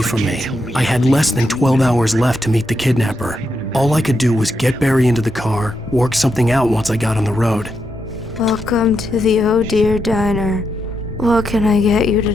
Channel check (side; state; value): both; normal; correlation 0.83